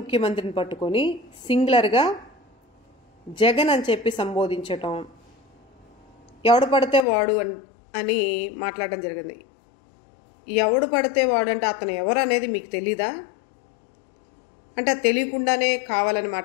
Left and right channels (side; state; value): right; drops out; at 7.1 s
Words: పట్టుకొని సింగులర్గా జగన్ అని చెప్పి సంబోధించటం, ఎవడు పడితే వాడు అని మాట్లాడడం జరిగింది. ఎవడు పడితే వాడు అంటే అతను ఎవరు అనేది మీకు తెలీదా? అంటే తెలియకుండానే కావాలని